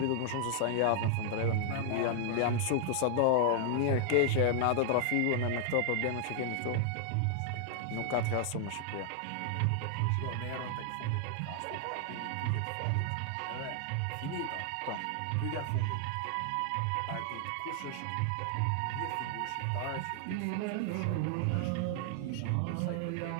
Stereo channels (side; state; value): both; different; correlation 0.00